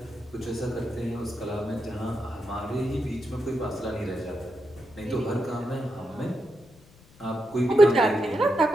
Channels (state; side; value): noise; left; rumble, 26 dB below the sound